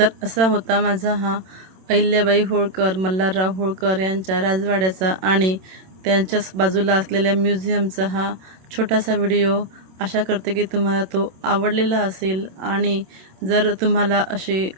असा होता माझा हा अहिल्याबाई होळकर, मल्हारराव होळकर यांच्या राजवाड्याचा आणि त्यांच्याच बाजूला असलेल्या म्युझियमचा हा छोटासा व्हिडिओ। आशा करते की तुम्हाला तो आवडलेला असेल आणि जर तुम्हाला असे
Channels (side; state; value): left; late; 27 ms